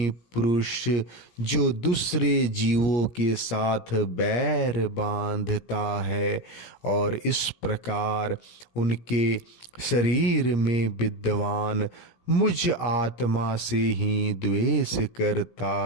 पुरुष जो दूसरे जीवों के साथ बैर बांधता है और इस प्रकार उनके शरीर में विद्वान मुझ आत्मा से ही द्वेष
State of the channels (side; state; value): right; late; 17 ms